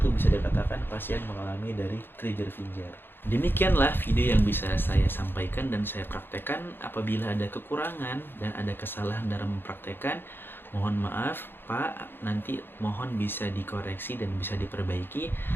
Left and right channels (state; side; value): late; right; 0.10 ms